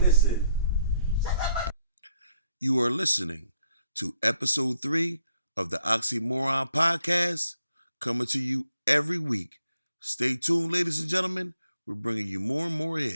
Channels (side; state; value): both; inverted; correlation -0.73